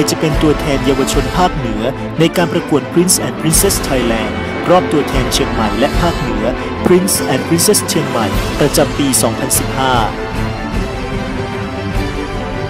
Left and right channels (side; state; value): both; identical; correlation 1.00